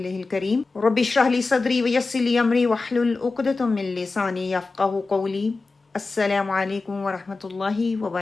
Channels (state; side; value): quieter; right; 3.8 dB